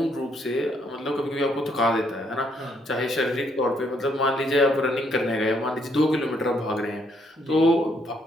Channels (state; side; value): normal; both; correlation 0.72